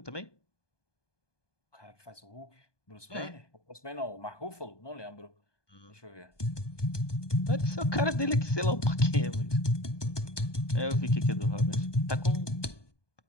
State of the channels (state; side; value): late; right; 1.2 ms